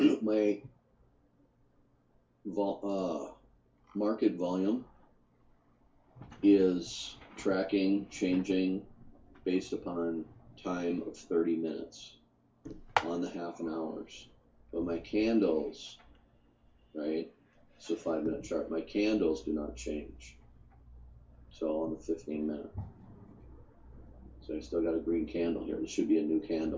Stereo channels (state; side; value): identical; both; correlation 1.00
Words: market volume is tracking, changing based upon time of 30 minutes on the half an hours. But my candles, right? It's a 5-minute chart. My candles do not change. So on the 15-minute. So I still got a green candle here. This should be a new